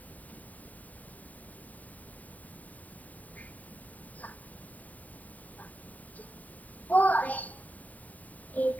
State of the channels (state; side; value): late; right; 0.073 ms